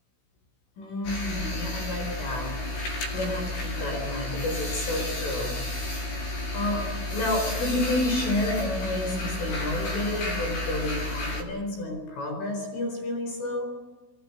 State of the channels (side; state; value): right; late; 16 ms